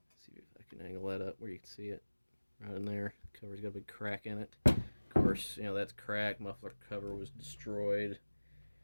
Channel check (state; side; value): inverted; both; correlation -1.00